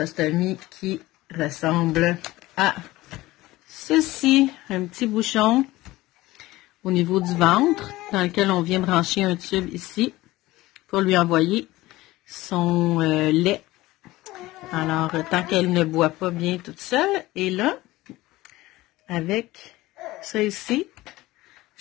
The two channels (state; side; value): quieter; right; 18.3 dB